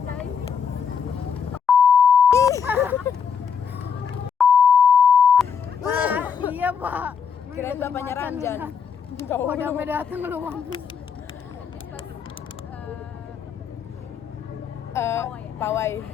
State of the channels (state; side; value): quieter; right; 6.9 dB